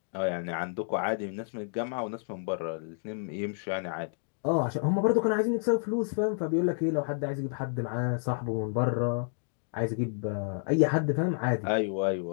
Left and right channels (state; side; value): silent; right; 58 dB below the other